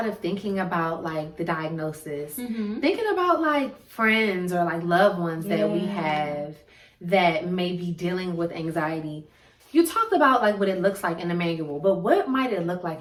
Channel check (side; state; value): both; identical; correlation 1.00